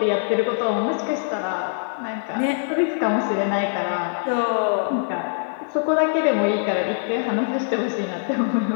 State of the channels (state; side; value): silent; right; 63 dB below the other